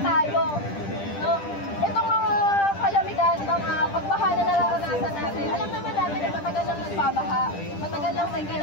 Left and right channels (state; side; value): late; right; 10 ms